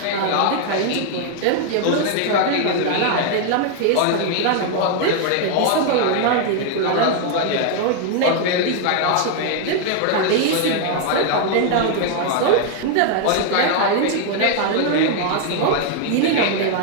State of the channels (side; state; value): both; different; correlation 0.00